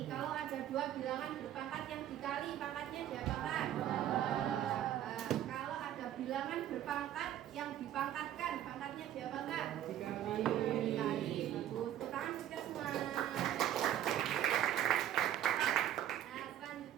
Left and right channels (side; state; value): left; quieter; 11.5 dB